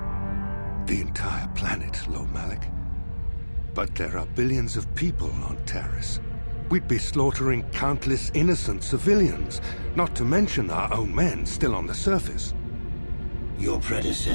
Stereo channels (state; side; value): inverted; both; correlation -1.00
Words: The entire planet, Lord Malak? But there are billions of people on Taris. We'd be slaughtering countless innocent civilians, not to mention our own men still on the surface. Your